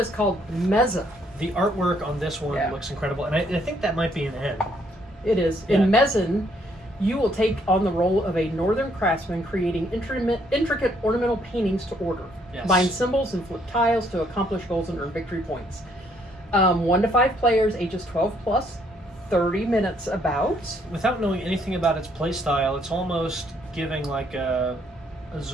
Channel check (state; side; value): normal; both; correlation 0.68